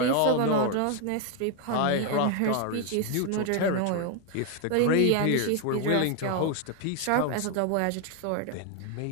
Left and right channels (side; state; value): both; different; correlation 0.01